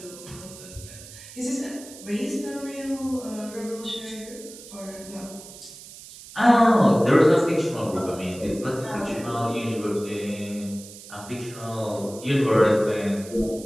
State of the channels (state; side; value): noise; right; hiss, 16 dB below the sound